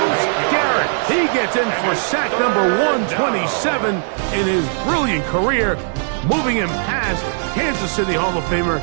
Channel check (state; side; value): silent; left; 67 dB below the other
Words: Garrett. He gets in for sack number 127 in his brilliant career, moving him past Kansas City Hall of Famer